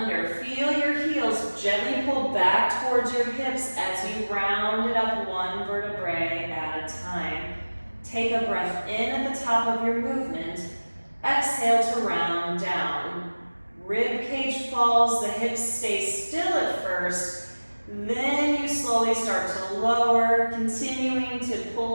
feel your heels gently pull back towards your hips as you round it up one vertebrae at a time. Take a breath in at the top of your movement. Exhale to round down. Rib cage falls, the hips stay still at first, then you slowly start to lower, continuing to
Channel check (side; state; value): both; inverted; correlation -1.00